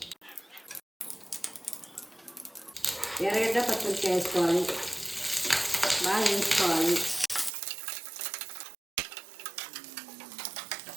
ఎర్రగడ్డ, పచ్చిమిర్చి వేసుకోవాలి. బాగా వేయించుకోవాలి.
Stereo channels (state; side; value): drops out; left; at 7.5 s